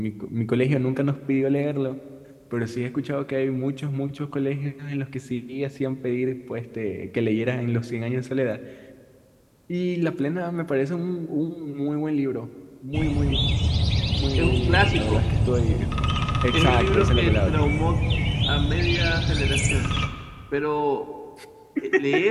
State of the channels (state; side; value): identical; both; correlation 1.00